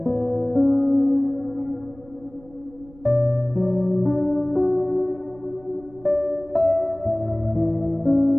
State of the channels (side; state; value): right; noise; rumble, 24 dB below the sound